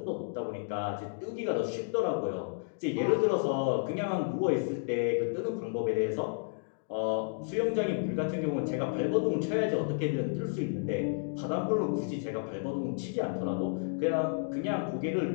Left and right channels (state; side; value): silent; right; digital silence